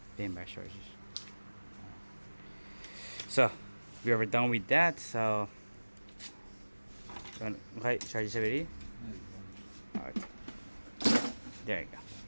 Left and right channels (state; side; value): inverted; both; correlation -1.00